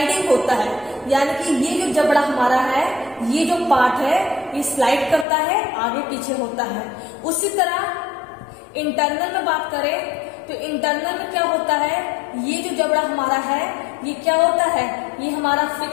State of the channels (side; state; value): right; drops out; at 5.2 s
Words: होता है। यानी कि ये जो जबड़ा हमारा है, ये जो पार्ट है, ये स्लाइड करता है, आगे पीछे होता है। उसी तरह इंटरनल में बात करें तो इंटरनल में क्या होता है, ये जो जबड़ा हमारा है, ये क्या होता है, ये हमारा